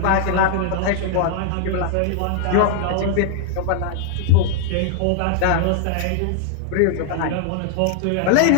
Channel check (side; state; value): both; different; correlation 0.00